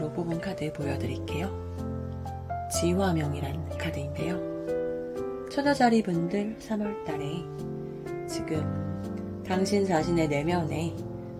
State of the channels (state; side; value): identical; both; correlation 1.00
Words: 뽑은 카드 보여드릴게요. 지화명이란 카드인데요. 처녀자리 분들 3월달에 지금 당신 자신의 내면에